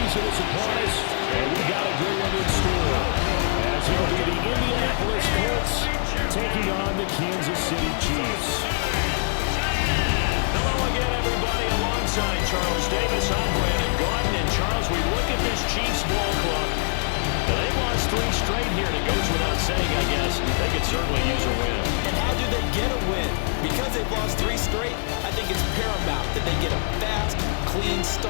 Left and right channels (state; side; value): silent; right; digital silence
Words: Exodus upon us, and we got a good one in store. As it'll be the Indianapolis Colts taking on the Kansas City Chiefs. Hello again, everybody. Alongside Charles Davis, I'm Brandon Gaudin. And Charles, we look at this Chiefs ball club. They've lost 3 straight here, and it goes without saying, I guess. They could certainly use a win. And how do they get a win? Because they've lost 3 straight, I think it's paramount that they get a fast, clean